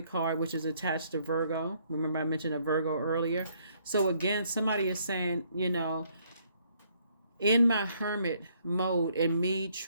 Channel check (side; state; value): both; inverted; correlation -0.68